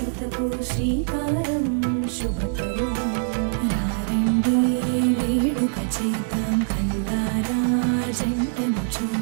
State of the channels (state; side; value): silent; left; 63 dB below the other